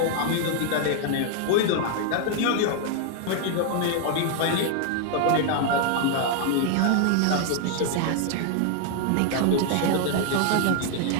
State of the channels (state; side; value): different; both; correlation 0.00